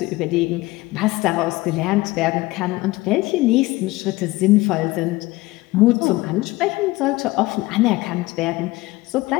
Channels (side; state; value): right; quieter; 20.1 dB